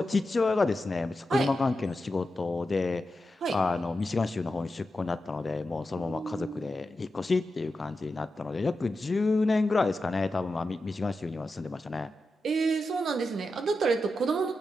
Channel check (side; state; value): both; normal; correlation 0.90